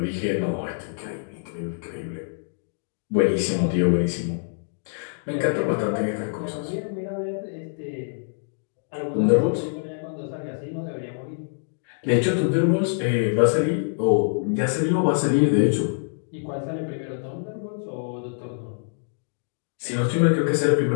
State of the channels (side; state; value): right; silent; digital silence